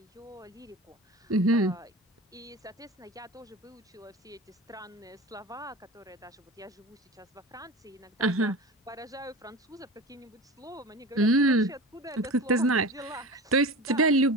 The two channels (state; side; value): normal; both; correlation 0.31